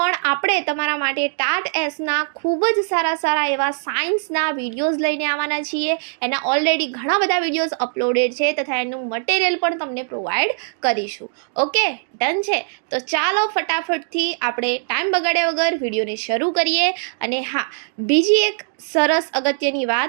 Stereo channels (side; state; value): left; silent; digital silence